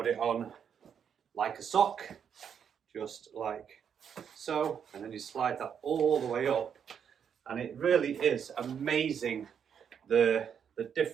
it on like a sock, just like so, and then you slide that all the way up, and it really is amazing the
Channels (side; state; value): left; quieter; 7.8 dB